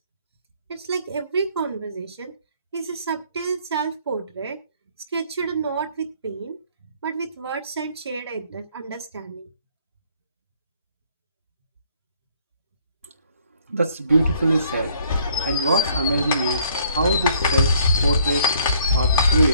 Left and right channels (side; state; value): both; inverted; correlation -0.63